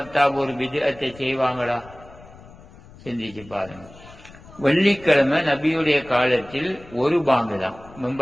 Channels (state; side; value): noise; left; rumble, 21 dB below the sound